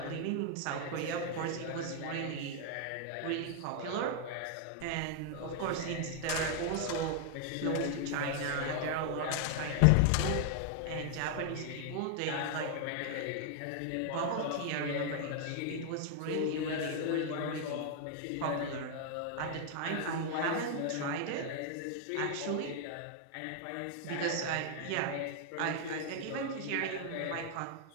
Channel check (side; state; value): both; different; correlation 0.00